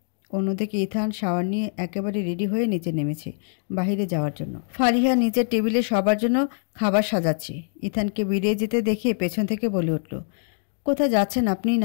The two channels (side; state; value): right; silent; 62 dB below the other